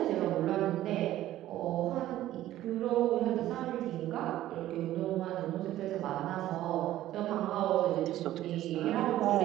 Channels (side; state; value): left; quieter; 14.0 dB